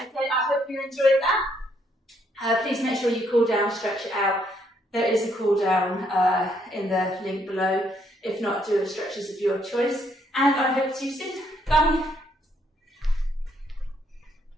Okay, I hope you enjoyed that. Please make sure you cool down, stretch it out. There is a cool down in the link below. If not, do stretches of your choice. And I hope to see you soon. Bye.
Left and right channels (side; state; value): both; normal; correlation 0.71